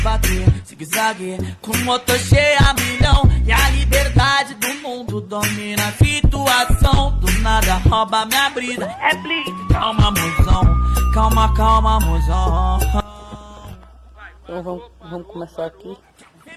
zigue-zague, com motor cheio a milhão, e a liberdade do mundo domina a situação, do nada rouba minha brisa, é blitz, calma, mozão, calma, calma, mozão. Então vamos começar aqui.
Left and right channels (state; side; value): identical; both; correlation 1.00